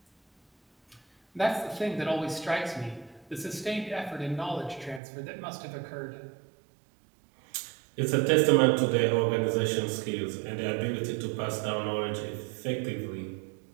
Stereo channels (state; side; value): drops out; left; at 5.0 s